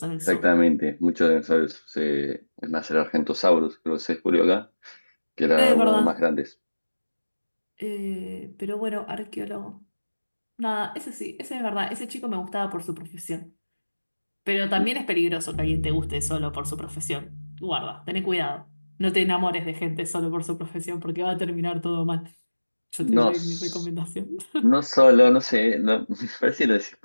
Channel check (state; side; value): inverted; both; correlation -1.00